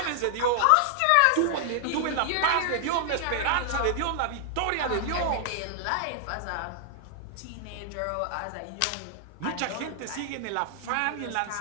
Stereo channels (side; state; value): both; different; correlation -0.01